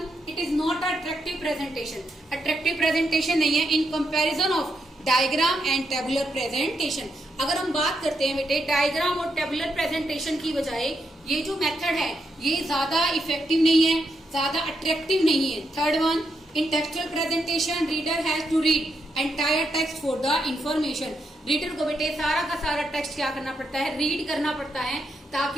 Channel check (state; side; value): normal; both; correlation 0.81